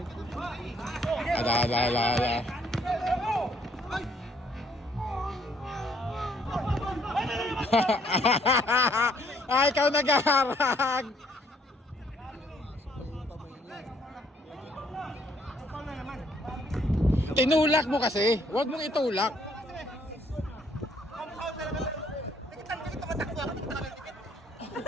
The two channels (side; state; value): both; normal; correlation 0.66